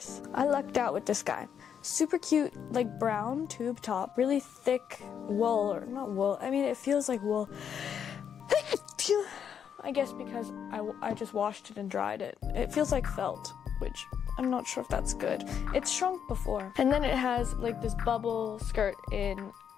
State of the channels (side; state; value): right; quieter; 8.1 dB